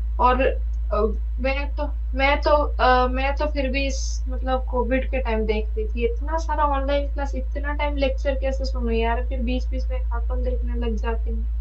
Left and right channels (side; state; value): both; identical; correlation 1.00